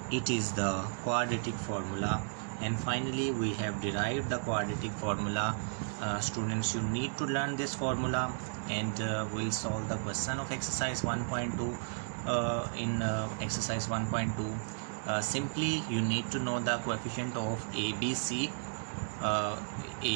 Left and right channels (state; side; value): silent; left; digital silence